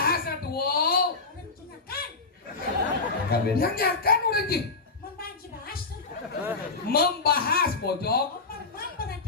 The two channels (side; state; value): right; quieter; 4.0 dB